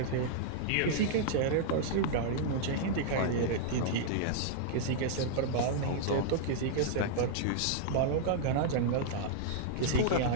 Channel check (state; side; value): different; both; correlation -0.01